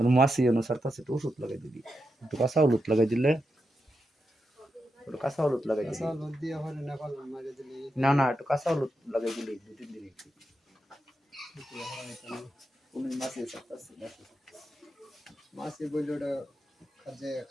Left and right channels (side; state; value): both; normal; correlation 0.87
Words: মাসি অনুসার কাছে একটু ওষুধ লাগাই দিবি একটু কাঁচা হলুদ লাগাই দিলে একটু কাঁচা হলুদ লাগাই দিলে না না একটু কাঁচা হলুদ লাগাই দিলে 2-3 দিন একটু কোন মাসি আছে মাসি বলল ওটা কাজে